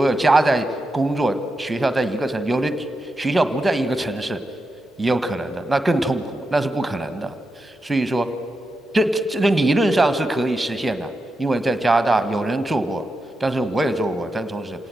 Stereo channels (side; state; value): both; normal; correlation 0.88